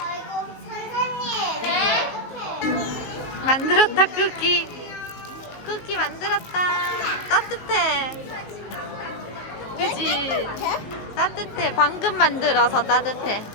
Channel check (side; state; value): right; late; 19 ms